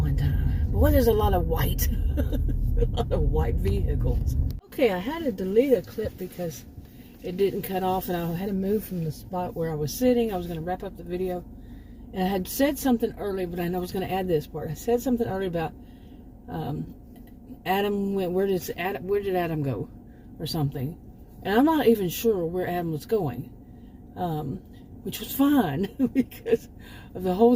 time. Boy, there's a lot of white, a lot of white vehicles. Okay, I had to delete a clip because it didn't cut off, and I had to move from the spot where I was sitting. I was going to wrap up the video, and I had said something earlier, but I know I was going to add this part. I said something earlier about Adam went. Where did Adam go, or something? And I'm not even sure where Adam was going, which was fine because of the whole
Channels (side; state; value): both; identical; correlation 1.00